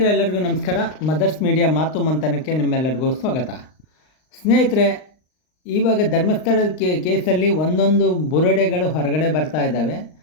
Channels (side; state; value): right; late; 39 ms